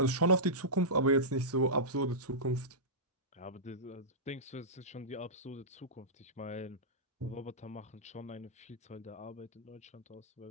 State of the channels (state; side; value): normal; both; correlation -0.16